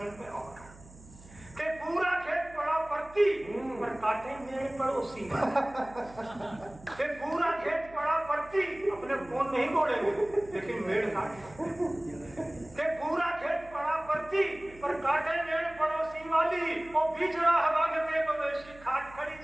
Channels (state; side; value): noise; right; hum, 21 dB below the sound